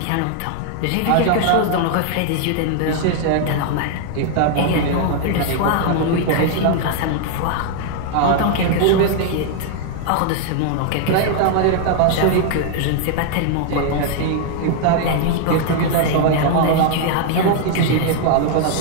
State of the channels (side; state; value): both; different; correlation 0.00